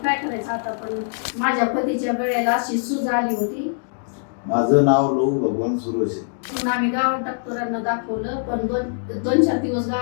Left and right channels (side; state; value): right; silent; digital silence